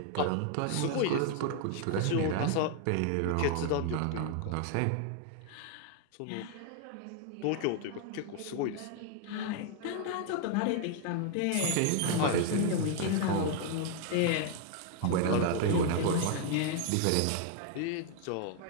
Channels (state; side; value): different; both; correlation 0.00